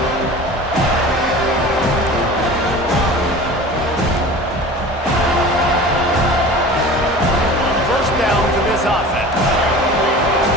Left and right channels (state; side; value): normal; both; correlation 0.38